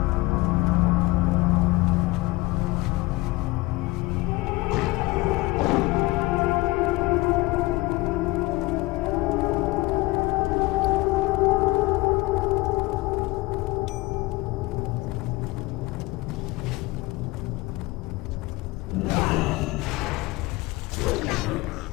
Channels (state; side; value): quieter; right; 21.2 dB